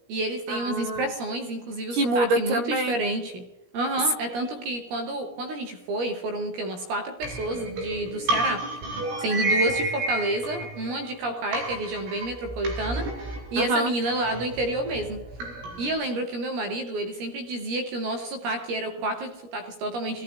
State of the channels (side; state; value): left; late; 17 ms